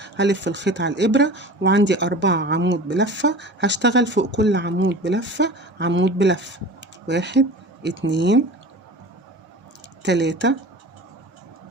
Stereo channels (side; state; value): both; normal; correlation 0.37